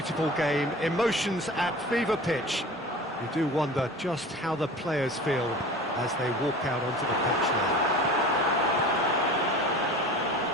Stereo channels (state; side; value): normal; both; correlation 0.38